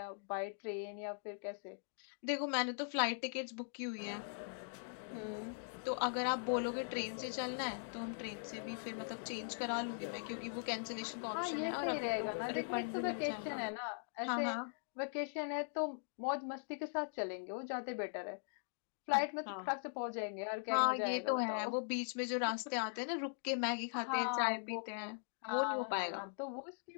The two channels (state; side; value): silent; right; digital silence